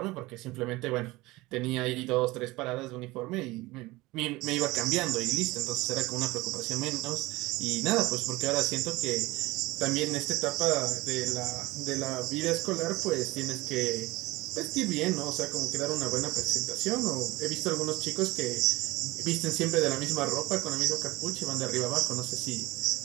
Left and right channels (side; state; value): left; quieter; 20.6 dB